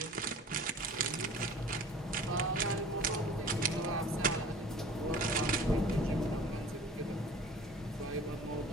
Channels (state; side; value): normal; both; correlation 0.44